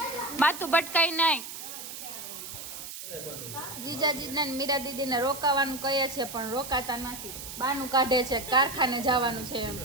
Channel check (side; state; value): right; noise; hiss, 10 dB below the sound